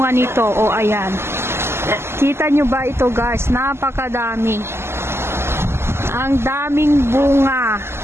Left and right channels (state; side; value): late; left; 0.12 ms